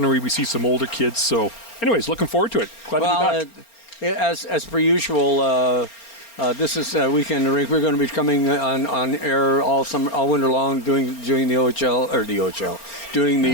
we see some older kids. So anyways, looking forward to it. Glad to be back. As per usual, this is Weekend in the Rink. We're going to be coming on air all winter long, doing the OHL or the OHL, doing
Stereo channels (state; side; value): late; right; 4.3 ms